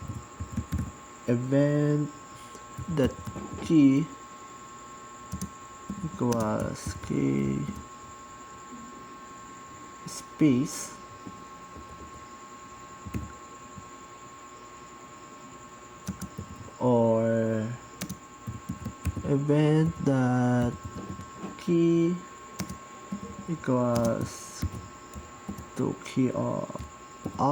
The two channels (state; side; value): identical; both; correlation 1.00